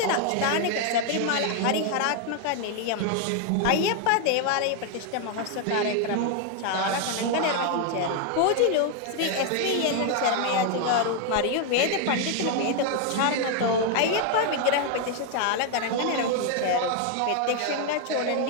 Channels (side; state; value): both; different; correlation 0.01